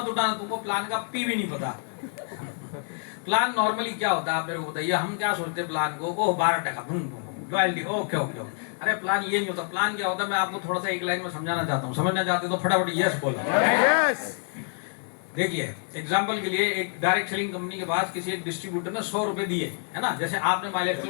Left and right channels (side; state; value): right; silent; 57 dB below the other